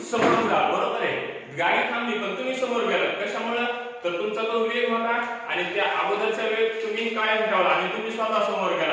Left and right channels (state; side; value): identical; both; correlation 1.00